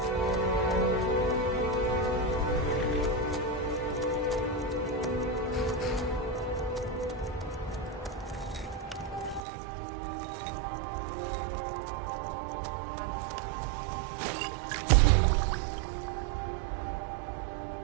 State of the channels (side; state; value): left; drops out; at 9.4 s